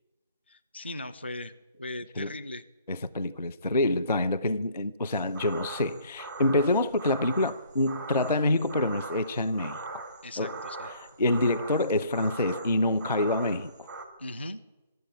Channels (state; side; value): inverted; both; correlation -0.58